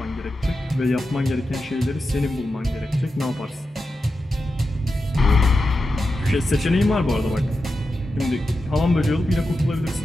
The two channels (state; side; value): normal; both; correlation 0.90